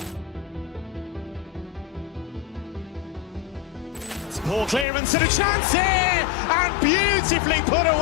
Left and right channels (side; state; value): right; drops out; at 4.9 s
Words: Poor clearance and a chance here, and beautifully put